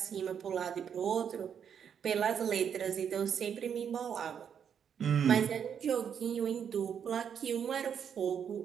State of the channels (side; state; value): left; quieter; 7.9 dB